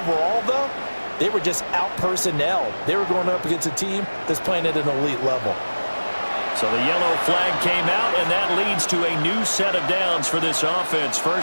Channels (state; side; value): inverted; both; correlation -1.00